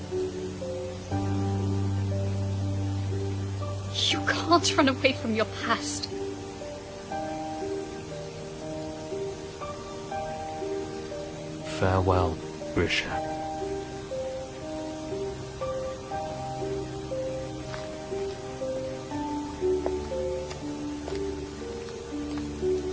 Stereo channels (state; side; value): identical; both; correlation 1.00